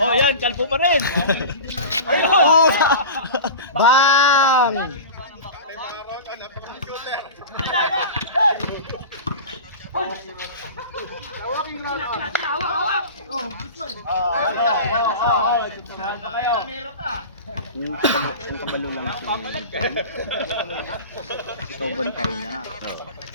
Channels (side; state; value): both; inverted; correlation -0.32